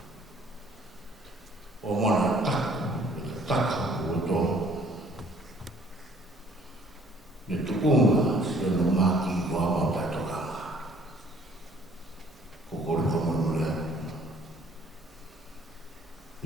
Omana tak untuk itu yang maki gua mau tak kama kokol kamu melihat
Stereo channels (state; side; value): normal; both; correlation 0.59